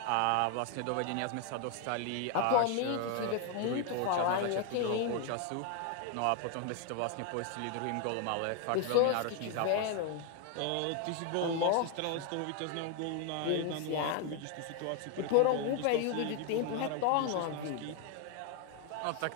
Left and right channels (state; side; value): different; both; correlation 0.01